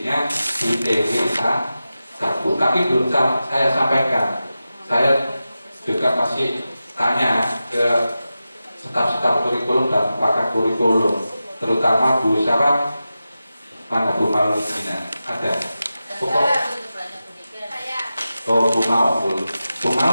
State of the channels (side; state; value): both; inverted; correlation -0.93